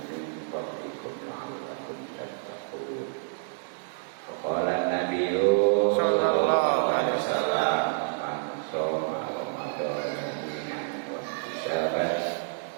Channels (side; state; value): left; silent; digital silence